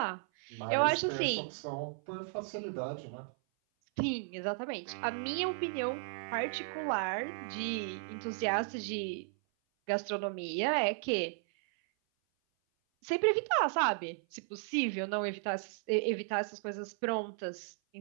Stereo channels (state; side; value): silent; left; 54 dB below the other